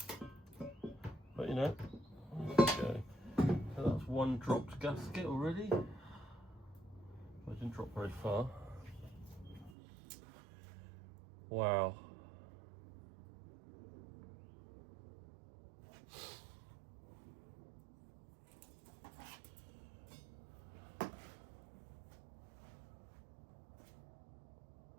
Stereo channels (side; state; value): left; drops out; at 9.8 s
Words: But you know, there we go. So that's one dropped gasket already. I didn't drop very far. Wow.